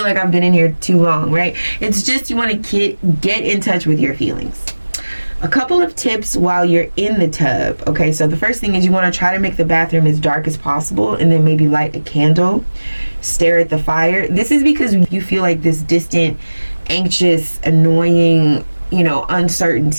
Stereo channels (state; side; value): inverted; both; correlation -1.00